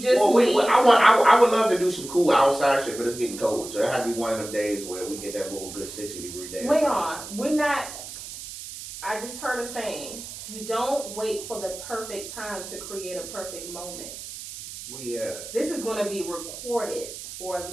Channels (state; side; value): noise; right; hiss, 11 dB below the sound